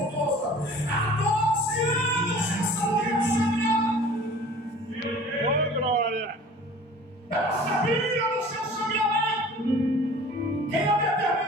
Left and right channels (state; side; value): normal; both; correlation 0.45